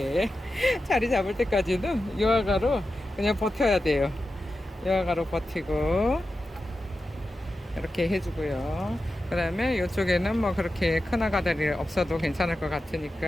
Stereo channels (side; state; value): both; normal; correlation 0.91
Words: 자리 잡을 때까지는 이 아가로 그냥 버텨야 돼요. 이 아가로 버티고 이렇게 해주고요. 그 다음에 이쪽에는 뭐 그렇게 큰 아가들이 없어도 괜찮을 것